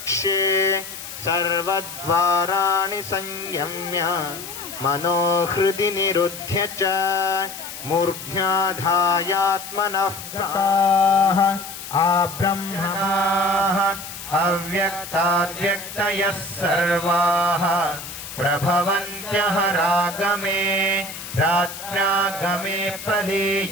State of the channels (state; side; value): noise; left; hiss, 11 dB below the sound